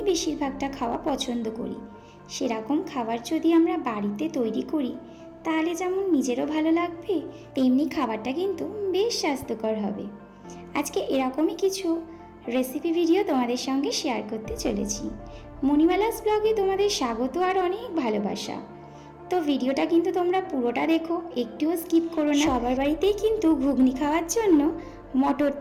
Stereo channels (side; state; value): both; identical; correlation 1.00